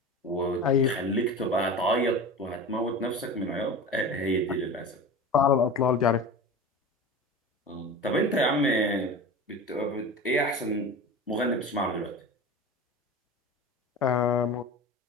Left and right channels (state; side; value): normal; both; correlation 0.32